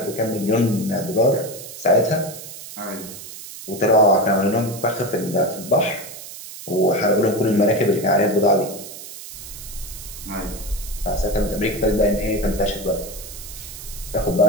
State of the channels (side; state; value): right; noise; hiss, 13 dB below the sound